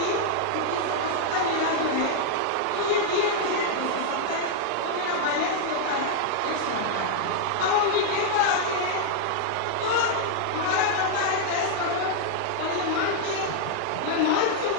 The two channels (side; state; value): both; different; correlation -0.01